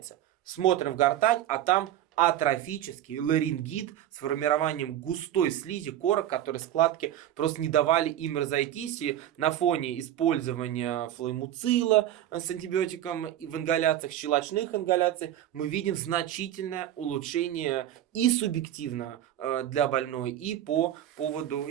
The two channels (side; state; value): left; quieter; 12.0 dB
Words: Смотрим в гортань, а там атрофический ларингит с формированием густой слизи корок, которые складки просто не давали им разойтись. И на фоне использования флоэмуцила с антибиотиком и в ингаляциях, щелочных ингаляций, мы видим значительное улучшение и субъективно для больной, и по поводу,